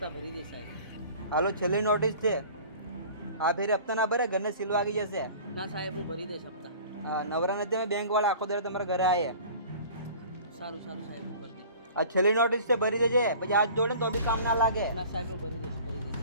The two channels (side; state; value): both; inverted; correlation -0.44